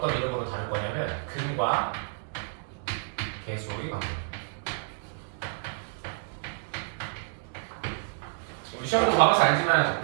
이름으로 다룰 거냐면 근과 계수의 관계. 우리 시험도 봐봐서 알지만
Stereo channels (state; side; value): silent; left; digital silence